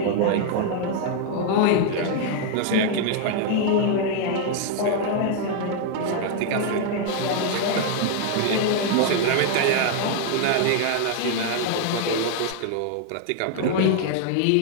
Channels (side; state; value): both; different; correlation 0.00